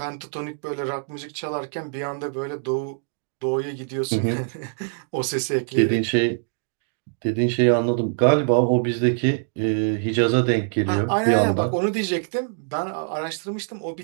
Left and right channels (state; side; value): silent; left; digital silence